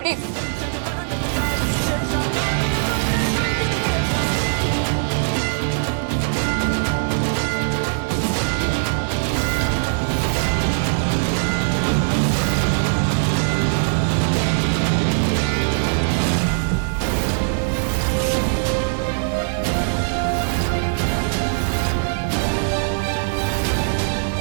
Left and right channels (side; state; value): left; silent; digital silence